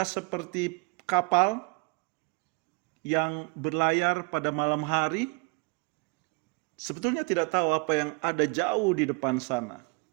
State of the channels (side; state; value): left; quieter; 30.0 dB